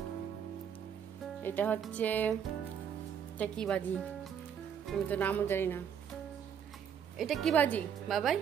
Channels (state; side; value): quieter; left; 8.1 dB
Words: এটা হচ্ছে এটা কি বাজি আমি তো নামও জানি না। এটা কি বাজি বাবাই?